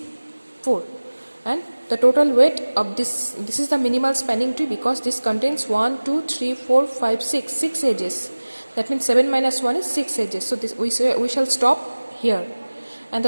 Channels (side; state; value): both; inverted; correlation -1.00